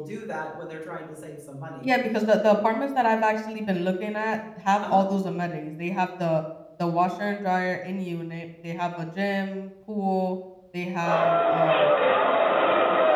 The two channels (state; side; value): identical; both; correlation 1.00